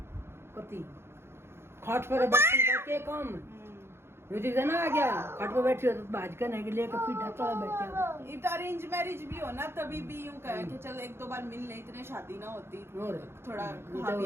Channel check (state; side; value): late; left; 0.12 ms